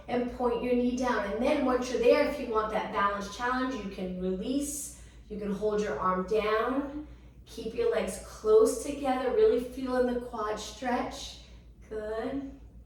and point your knee down. And then once you're there, if you want that balance challenge, you can release. You can hold your arm down. Keep your legs close together, really feeling the quad stretch. Good.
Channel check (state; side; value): identical; both; correlation 1.00